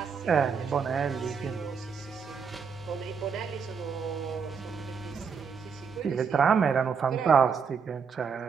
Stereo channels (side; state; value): left; quieter; 6.2 dB